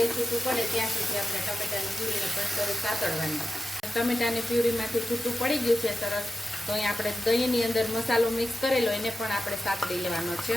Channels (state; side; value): normal; both; correlation 0.92